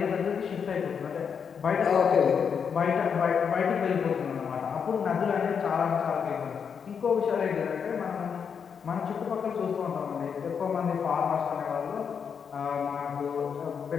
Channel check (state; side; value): quieter; right; 6.8 dB